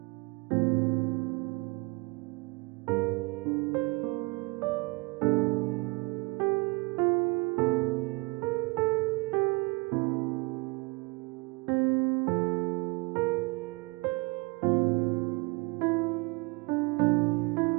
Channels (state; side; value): quieter; left; 27.7 dB